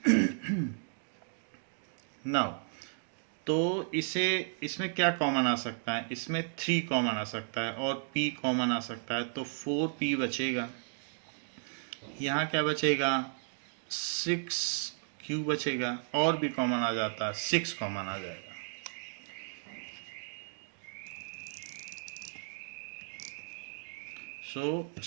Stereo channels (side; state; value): left; silent; digital silence